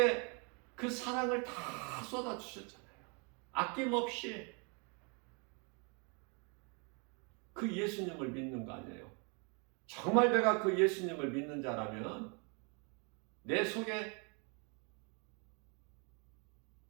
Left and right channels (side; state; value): left; quieter; 34.7 dB